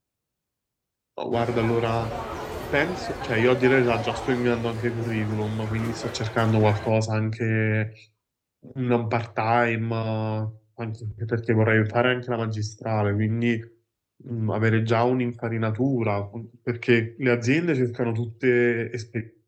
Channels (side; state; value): both; identical; correlation 1.00